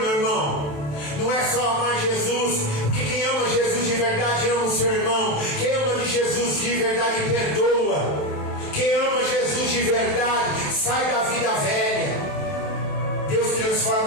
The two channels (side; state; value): right; late; 27 ms